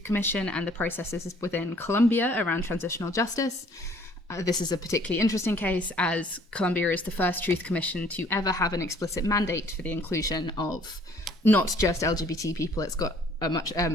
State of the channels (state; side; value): normal; both; correlation 0.58